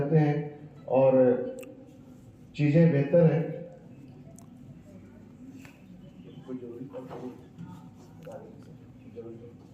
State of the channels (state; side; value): identical; both; correlation 1.00